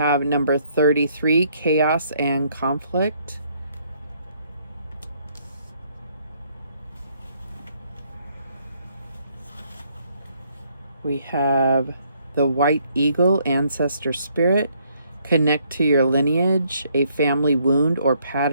number 33, chaos and conflict. We have the White Eagle, ancestor spirit. Connect to your lineage. A family wound or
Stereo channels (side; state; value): both; inverted; correlation -0.69